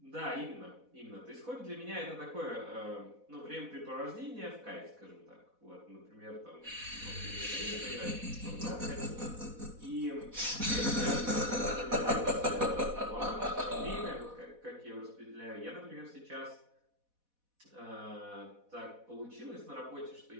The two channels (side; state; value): left; late; 4.1 ms